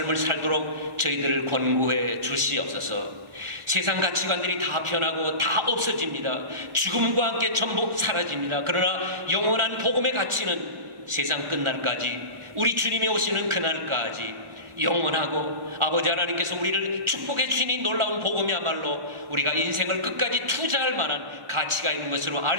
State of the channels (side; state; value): left; late; 1.4 ms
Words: 살도록 저희들을 권고해 주시옵소서. 세상 가치관들이 다 변하고 다 없어집니다. 죽음과 함께 전부 사라집니다. 그러나 영원한 복음의 가치는 세상 끝날까지, 우리 주님이 오시는 그날까지 영원하고, 아버지 하나님께서 우리를 축복해 주신 이 놀라운 복음이야말로 우리가 인생을 끝까지 투자할 만한 가치가 있는 것으로 알